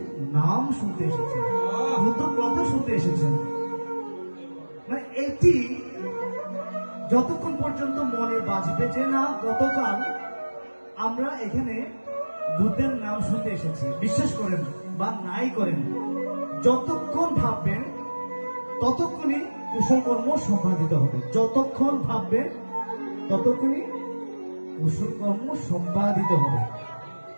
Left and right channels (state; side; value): inverted; both; correlation -1.00